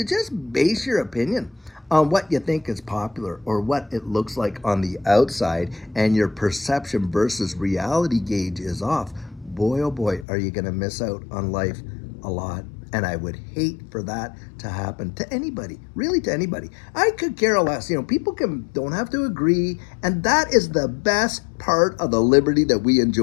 just base your opinion on what you think is popular or what it looks like on the outside, and your perception versus reality gauge is off, boy, oh boy, are you going to miss out on life a lot. And I would hate for that to happen to anybody, really to anybody. I could care less. People don't have to agree. And that is the best part of the liberty that we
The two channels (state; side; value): drops out; right; at 10.2 s